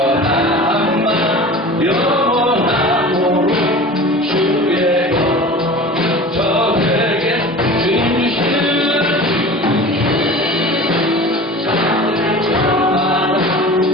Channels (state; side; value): normal; both; correlation 0.37